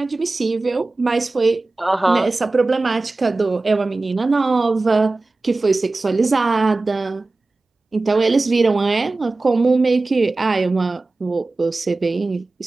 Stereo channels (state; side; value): quieter; left; 3.3 dB